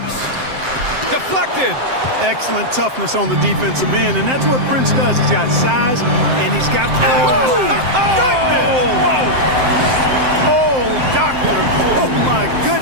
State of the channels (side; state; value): left; late; 7.7 ms